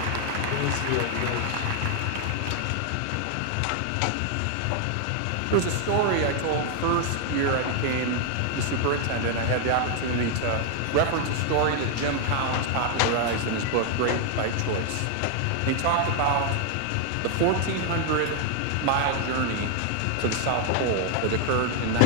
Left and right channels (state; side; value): different; both; correlation 0.00